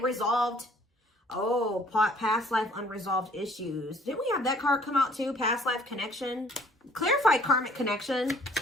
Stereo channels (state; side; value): normal; both; correlation 0.57